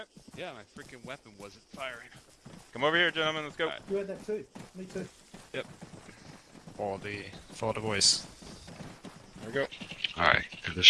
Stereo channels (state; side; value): identical; both; correlation 1.00